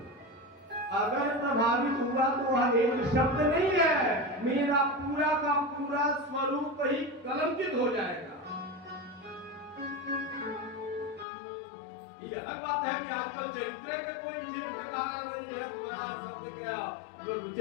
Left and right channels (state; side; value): drops out; right; at 11.2 s